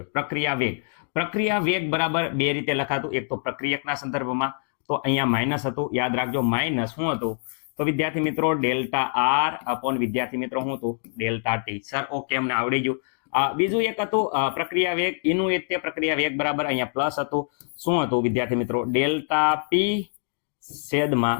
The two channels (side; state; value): right; silent; digital silence